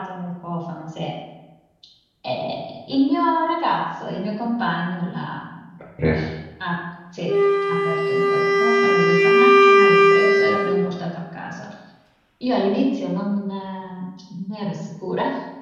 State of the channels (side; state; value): both; identical; correlation 1.00